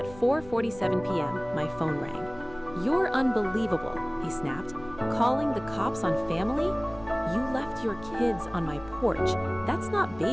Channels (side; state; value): left; noise; rumble, 18 dB below the sound